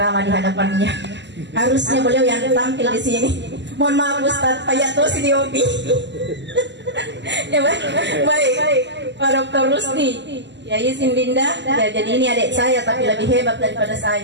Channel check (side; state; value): left; late; 0.52 ms